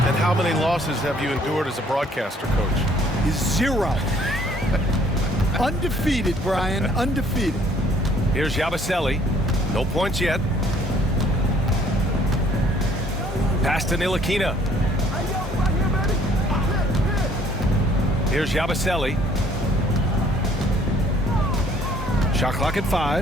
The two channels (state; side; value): normal; both; correlation 0.60